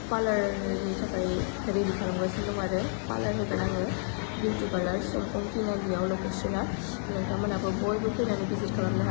पार्लारनि थाखाय रेडि खालामगासिनो दं आरो पार्लार होगोन आङो बिउटि पार्लार समखं तिनालियाव लकेसना नोंथांमोनाबो बयबो फैनानै भिजिट खालामनो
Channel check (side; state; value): right; silent; 58 dB below the other